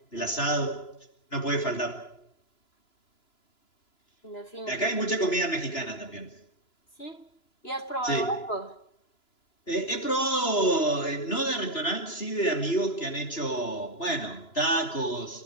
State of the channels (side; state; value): right; late; 2.9 ms